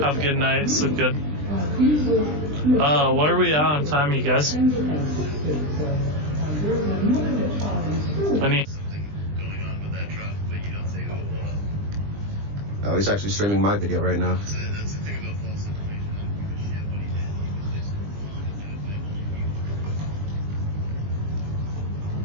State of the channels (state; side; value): late; left; 20 ms